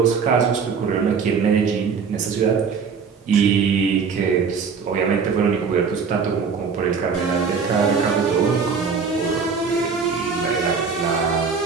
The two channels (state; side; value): quieter; left; 5.7 dB